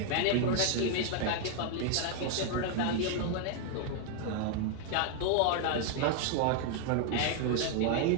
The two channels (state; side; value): different; both; correlation 0.00